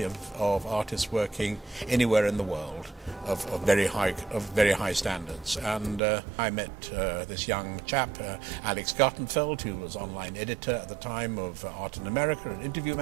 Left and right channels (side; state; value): left; drops out; at 6.0 s